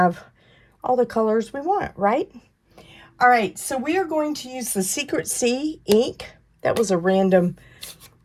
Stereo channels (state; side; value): identical; both; correlation 1.00